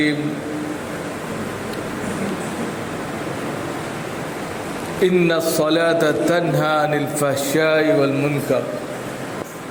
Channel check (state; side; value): identical; both; correlation 1.00